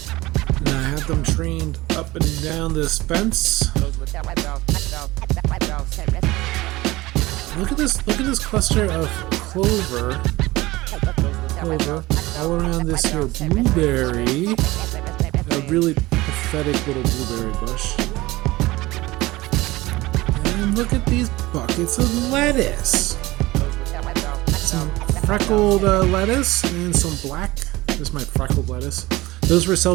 And I have them trained up and down this fence. Look at this cluster of clover all around this here blueberry. A really pathetic little blueberry bush. And look at these buckets of lettuce. Some freckled lettuce and some black. There's my freckled lettuce. Those were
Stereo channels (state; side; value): quieter; left; 19.4 dB